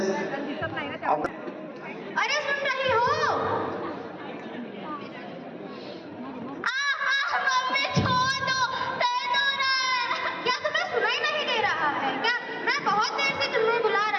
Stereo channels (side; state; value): both; identical; correlation 1.00